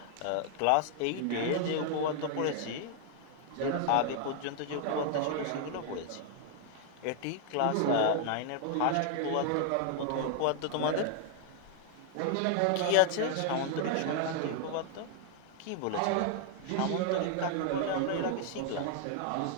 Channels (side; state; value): both; different; correlation 0.00